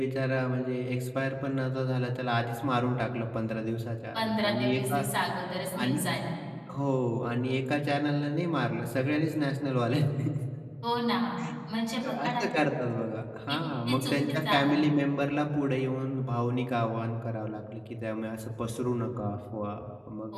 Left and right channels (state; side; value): identical; both; correlation 1.00